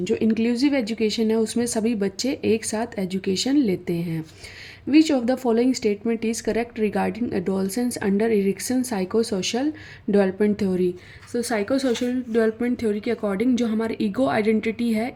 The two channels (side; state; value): both; identical; correlation 1.00